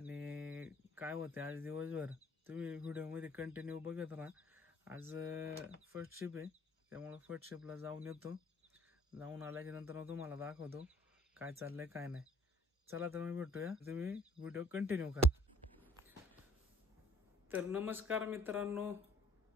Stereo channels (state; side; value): normal; both; correlation 0.58